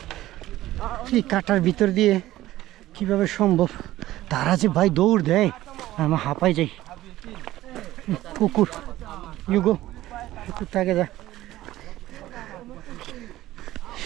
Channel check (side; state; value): left; quieter; 15.4 dB